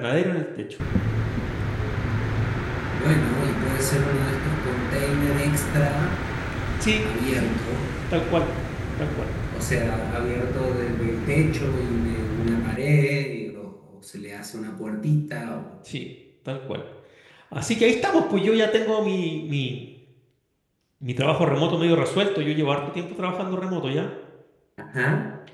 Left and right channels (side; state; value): both; identical; correlation 1.00